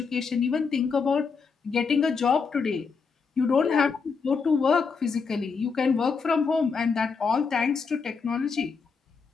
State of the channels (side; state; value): right; quieter; 5.2 dB